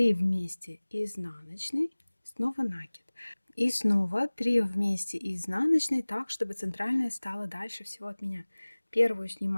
вместе изнаночной, снова накид. И снова 3 вместе изнаночной, так, чтобы центральная стала дальше всего от меня. Первую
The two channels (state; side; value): inverted; both; correlation -1.00